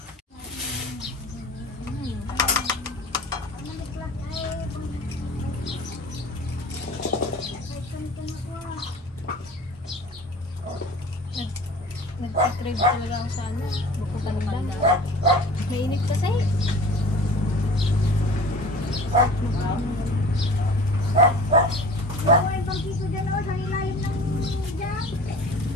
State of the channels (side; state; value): both; normal; correlation 0.41